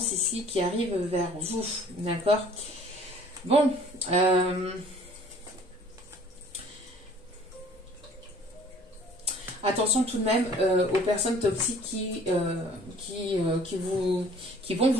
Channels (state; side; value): normal; both; correlation 0.53